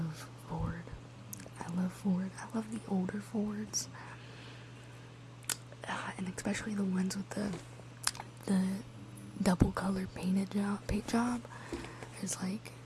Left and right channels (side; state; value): both; identical; correlation 1.00